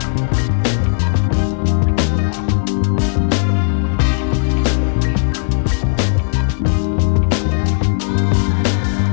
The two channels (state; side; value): silent; right; digital silence